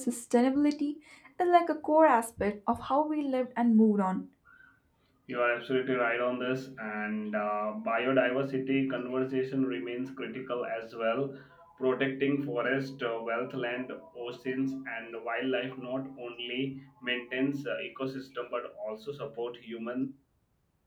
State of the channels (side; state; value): both; identical; correlation 1.00